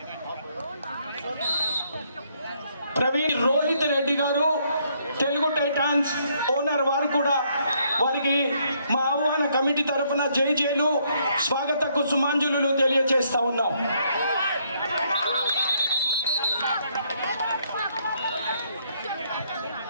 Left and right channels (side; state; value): both; inverted; correlation -0.71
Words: ప్రవీణ్ రోహిత్ రెడ్డి గారు తెలుగు టైటాన్స్ ఓనర్, వారు కూడా వారికి మా ఆహ్వాన కమిటీ తరఫున జైలు స్వాగత కుసుమాంజలు తెలియజేస్తా ఉన్నాం.